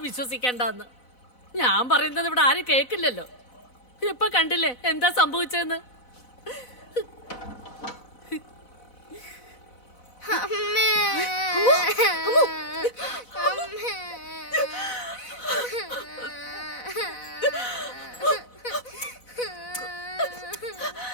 ഞാൻ പറയുന്നത് ഇവിടെ ആരും കേക്കില്ലല്ലോ. ഇപ്പൊ കണ്ടില്ലേ എന്താ സംഭവിച്ചെന്ന്?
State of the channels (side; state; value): right; late; 4.0 ms